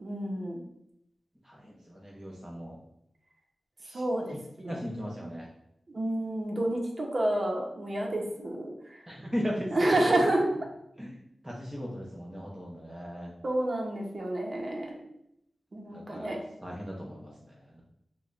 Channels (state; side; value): normal; both; correlation 0.95